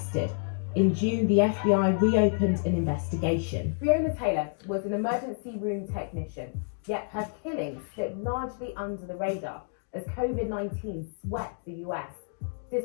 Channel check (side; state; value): right; silent; digital silence